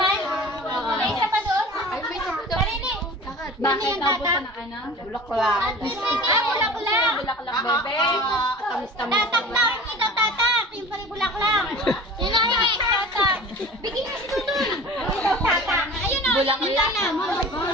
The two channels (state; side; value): normal; both; correlation 0.40